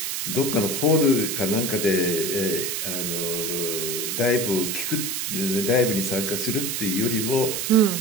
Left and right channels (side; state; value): right; noise; hiss, 2 dB below the sound